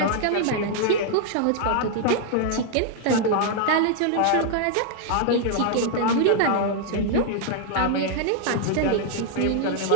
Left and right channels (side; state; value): both; different; correlation -0.01